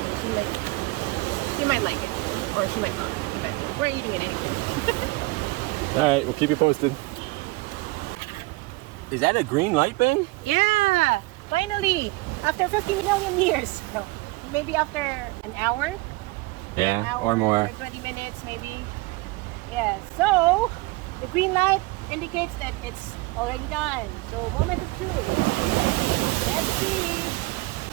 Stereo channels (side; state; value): left; quieter; 23.0 dB